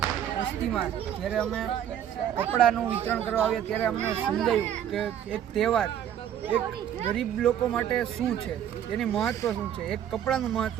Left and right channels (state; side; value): quieter; left; 10.1 dB